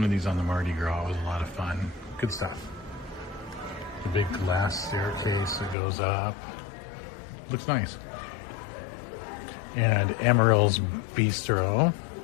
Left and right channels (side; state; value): right; drops out; at 5.8 s